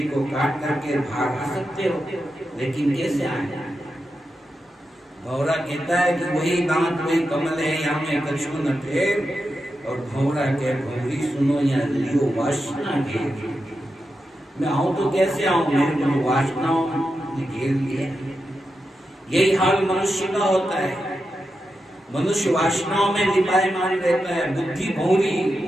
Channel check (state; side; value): normal; both; correlation 0.88